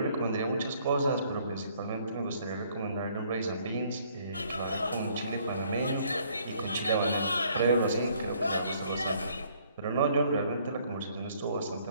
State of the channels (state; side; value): inverted; both; correlation -0.63